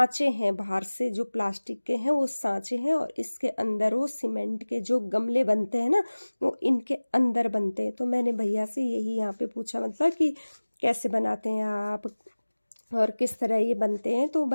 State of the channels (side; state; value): both; inverted; correlation -1.00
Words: हैं, बाहर से जो प्लास्टिक के हैं वो सांचे हैं और इसके अंदर वो सीमेंट के जो गमले बनते हैं ना, वो इनके अंदर बनते हैं। तो मैंने भैया से यही यहाँ पे पूछा मतलब कि कैसे बनाते हैं आप और किस तरह ये बनते हैं। तो